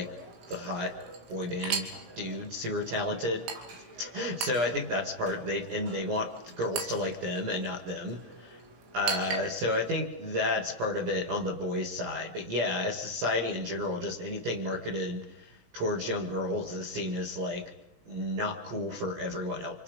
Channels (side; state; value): left; late; 18 ms